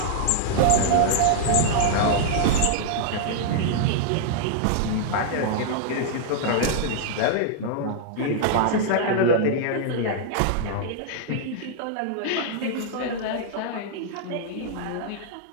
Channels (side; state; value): both; different; correlation -0.01